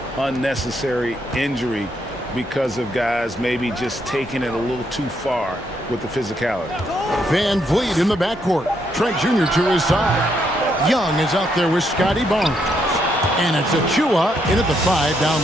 unnecessary injury because of guys maybe just taking it a little too far with the physicality. Van Vliet in the backcourt. Trent Jr. to his side. Young is out there with Scotty Barnes. And it's Achua in at the 5 down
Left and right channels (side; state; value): both; normal; correlation 0.76